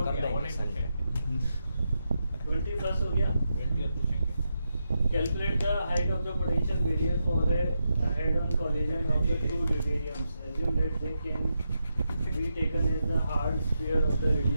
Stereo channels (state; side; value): inverted; both; correlation -0.85